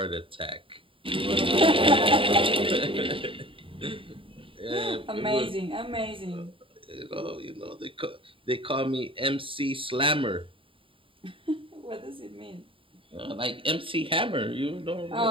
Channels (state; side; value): late; left; 0.25 ms